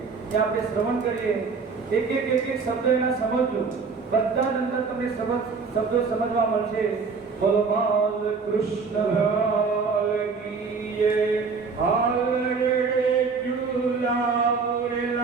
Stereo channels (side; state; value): left; quieter; 5.0 dB